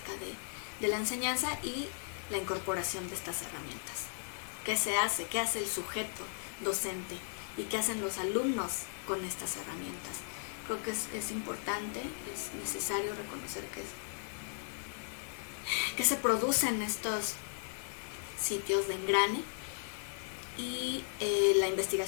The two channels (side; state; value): right; silent; digital silence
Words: de la enseñanza y la incorporación de estas herramientas. ¿Qué se hace? ¿Qué hace el sujeto docente? ¿Y qué hacen los alumnos con estas herramientas? Creo que es importante, es necesario reconocer que se producen estos sitios de engrane, y la